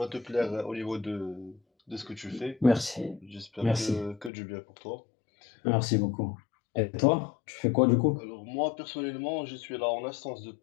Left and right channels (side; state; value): right; drops out; at 4.3 s